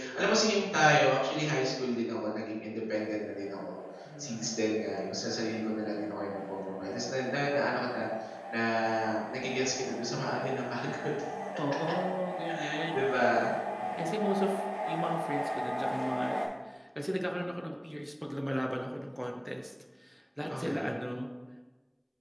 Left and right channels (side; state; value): both; identical; correlation 1.00